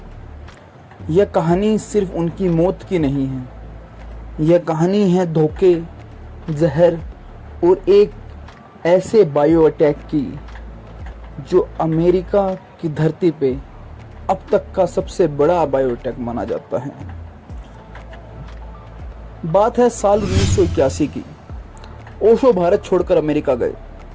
यह कहानी सिर्फ उनकी मौत की नहीं है, यह कहानी है धोखे, जहर और एक ऐसे बायो अटैक की जो अमेरिका की धरती पे अब तक का सबसे बड़ा बायो अटैक माना जाता है। बात है साल 1981 की। ओशो भारत छोड़कर अमेरिका गए।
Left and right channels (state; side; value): identical; both; correlation 1.00